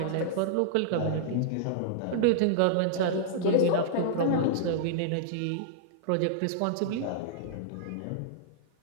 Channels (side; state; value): both; different; correlation -0.02